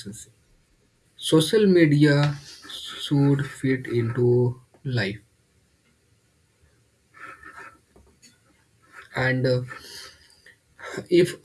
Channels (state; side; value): identical; both; correlation 1.00